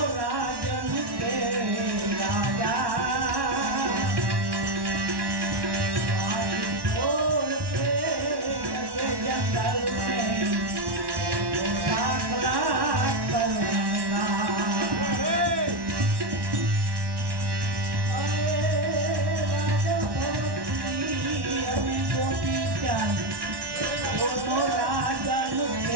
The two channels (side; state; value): left; late; 1.1 ms